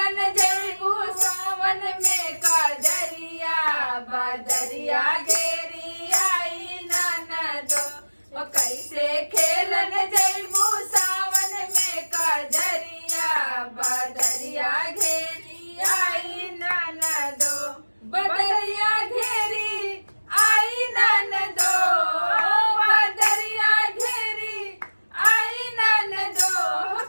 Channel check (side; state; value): both; inverted; correlation -1.00